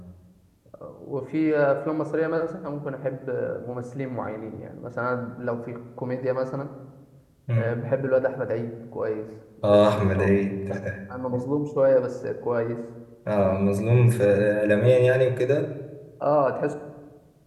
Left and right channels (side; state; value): both; identical; correlation 1.00